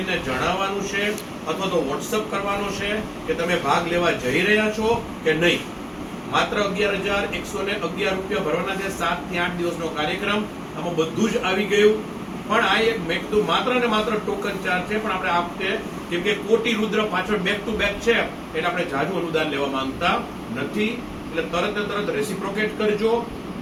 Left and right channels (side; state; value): both; identical; correlation 1.00